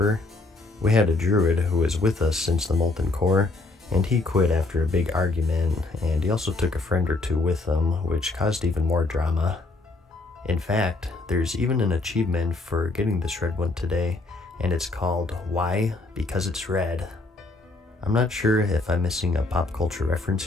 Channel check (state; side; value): quieter; right; 3.2 dB